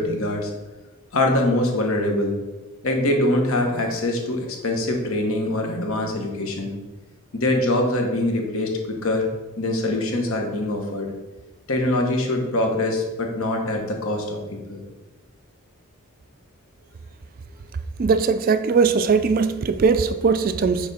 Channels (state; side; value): normal; both; correlation 0.27